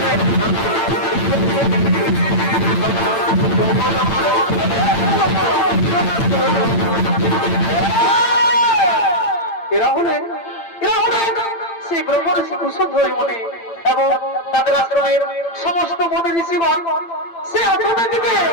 এরা হলেন সেই ব্রহ্মর কুশধ্বরী মনে এবং তাদের আশ্রমের সমস্ত মনে ঋষিগণ সে আশ্রমের দিকে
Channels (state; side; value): late; right; 8.9 ms